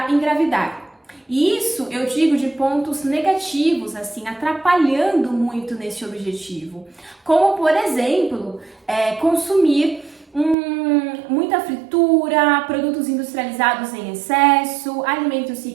engravidar. E isso eu digo de pontos negativos, assim, atrapalhando muito nesse objetivo. Como, por exemplo, consumir muita fritura, produtos industrializados em excesso, alimentos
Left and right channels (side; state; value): left; drops out; at 10.6 s